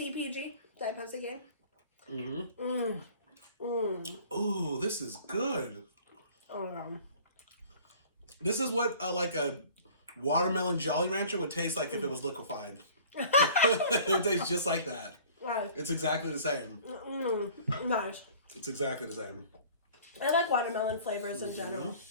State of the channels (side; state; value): both; inverted; correlation -0.48